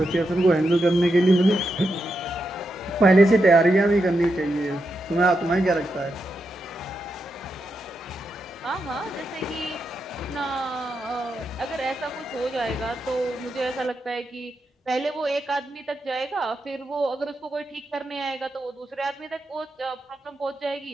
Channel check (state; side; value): normal; both; correlation 0.85